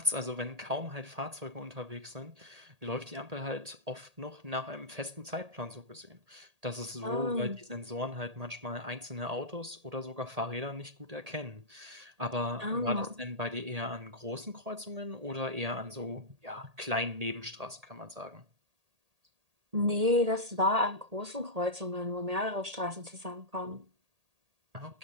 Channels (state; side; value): late; left; 1.8 ms